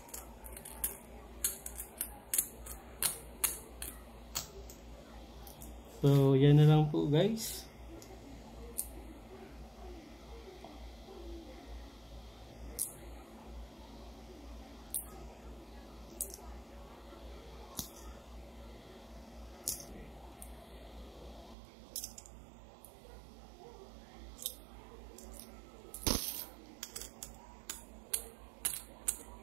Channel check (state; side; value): drops out; left; at 21.6 s